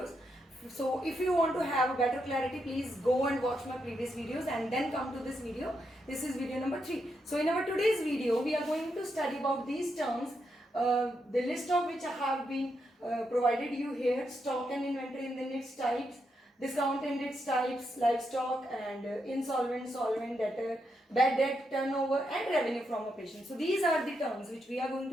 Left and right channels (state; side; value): normal; both; correlation 0.82